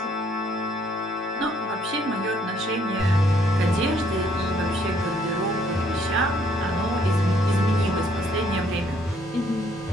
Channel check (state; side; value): normal; both; correlation 0.66